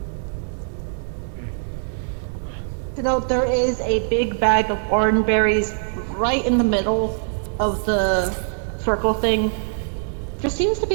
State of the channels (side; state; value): left; silent; digital silence